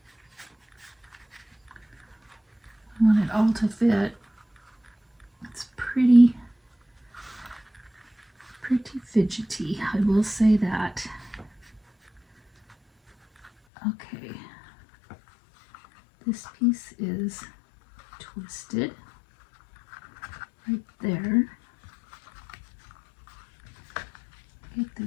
I want it all to fit. It's pretty fidgety, I will say that. Okay, this piece is twisted right there. Get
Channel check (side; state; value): right; drops out; at 13.5 s